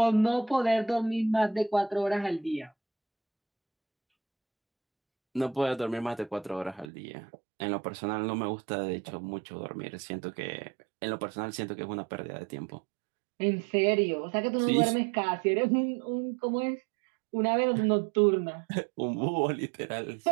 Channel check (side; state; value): left; drops out; at 6.9 s